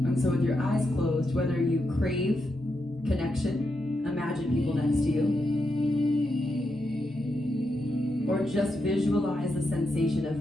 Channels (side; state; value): both; normal; correlation 0.84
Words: And so with your eyes closed, whether you crave connection, imagine people next to you, or just visualize the sensation